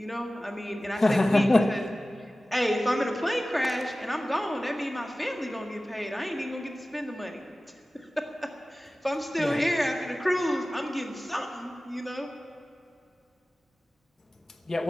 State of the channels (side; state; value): both; normal; correlation 0.96